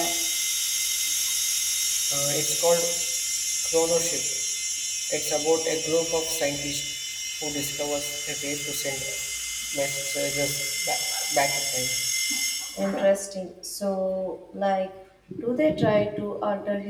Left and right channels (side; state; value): both; identical; correlation 1.00